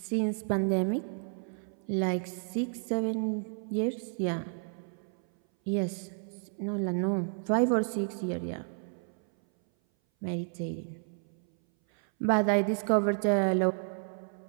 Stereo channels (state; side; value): silent; left; 57 dB below the other